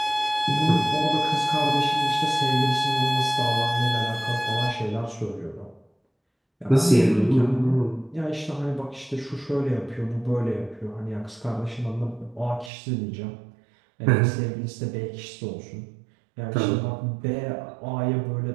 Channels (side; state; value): left; drops out; at 12.7 s